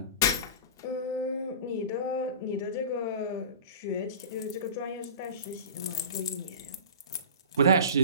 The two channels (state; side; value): inverted; both; correlation -0.35